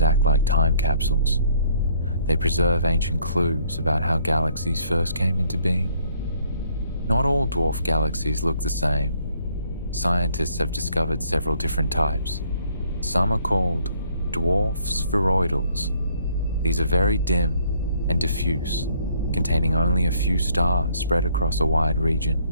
act like time capsules. They preserve ancient clues about how galaxies first came into being. Not all dwarf galaxies look the same. Scientists have discovered several different types. Some are called dwarf spheroidals. These are very dim and diffuse, containing only a few stars spread across a wide region.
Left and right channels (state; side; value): inverted; both; correlation -0.64